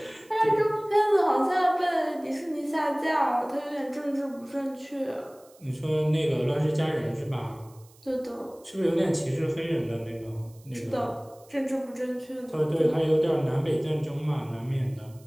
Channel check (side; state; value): right; noise; hiss, 28 dB below the sound